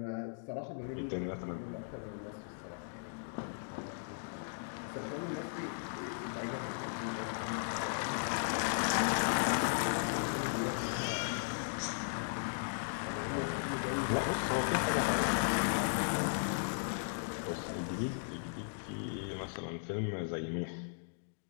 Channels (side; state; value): right; silent; digital silence